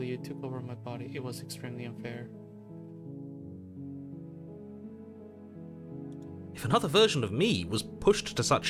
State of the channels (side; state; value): both; identical; correlation 1.00